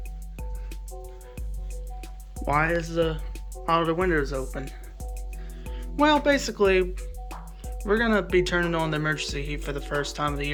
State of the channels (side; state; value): both; identical; correlation 1.00